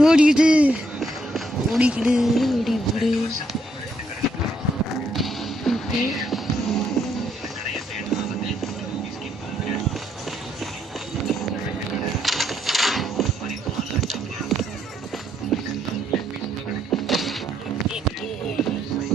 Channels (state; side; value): normal; both; correlation 0.73